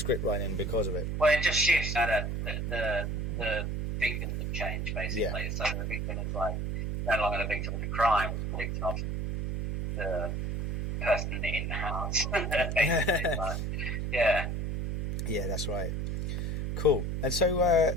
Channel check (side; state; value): right; noise; hum, 2 dB below the sound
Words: writing because of it. Well, it just shifts that the victims have changed basically. So the victim is like no longer the victim of the crime, it's the victim of the person in the house. Yeah, that's right. Cool. And so